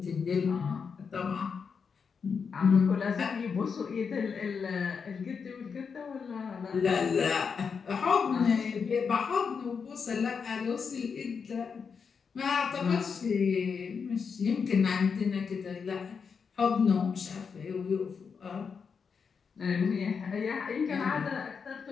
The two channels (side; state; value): right; quieter; 5.9 dB